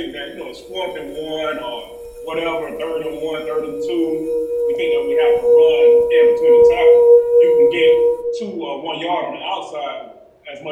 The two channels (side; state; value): both; identical; correlation 1.00